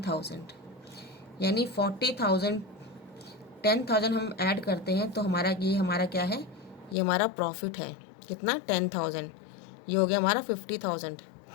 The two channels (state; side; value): drops out; right; at 7.0 s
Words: यानी 40,000 10,000 हम ऐड करते हैं तो हमारा ये हमारा क्या है? ये हमारा प्रॉफिट है। कितना? 10,000। ये हो गया हमारा 50,000।